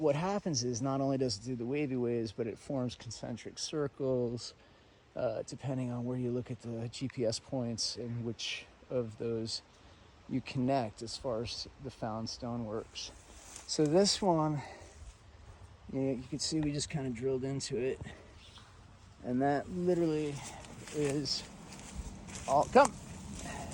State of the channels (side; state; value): both; identical; correlation 1.00